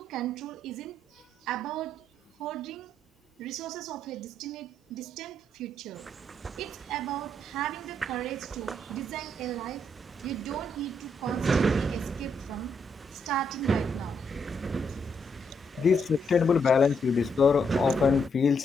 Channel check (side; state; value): both; normal; correlation 0.76